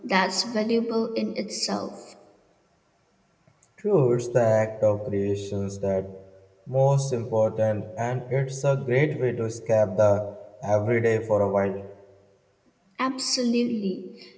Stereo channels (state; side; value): identical; both; correlation 1.00